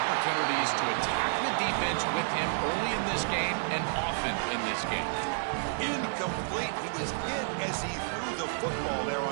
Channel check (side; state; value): left; silent; digital silence